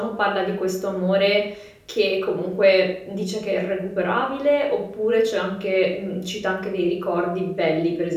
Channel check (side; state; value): both; identical; correlation 1.00